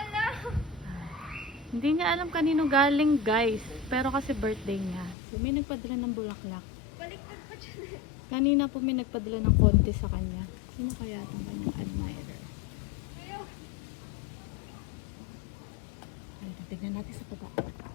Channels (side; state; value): right; drops out; at 5.2 s